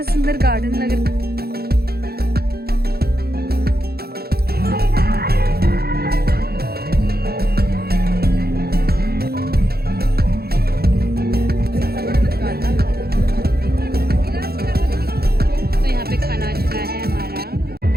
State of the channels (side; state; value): left; late; 0.45 ms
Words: सुंदर गार्डन लग रहा है।